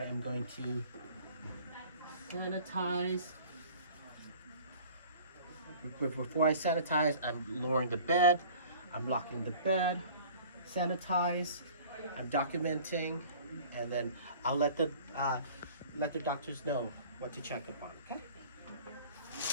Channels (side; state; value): both; inverted; correlation -0.47